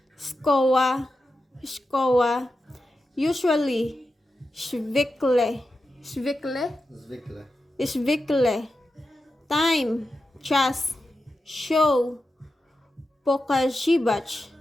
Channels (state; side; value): normal; both; correlation 0.90